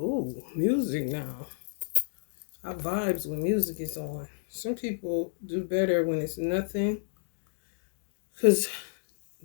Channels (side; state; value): right; silent; digital silence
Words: music now. I vibes when music is on. Some people do better when it's nothing because